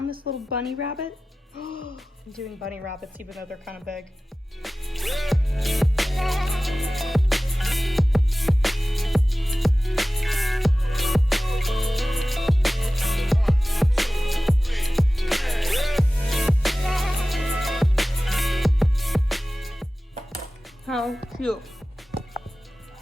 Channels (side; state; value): both; normal; correlation 0.96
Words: this little bunny rabbit. I'm doing bunny rabbits even though they're kind of big. How cute.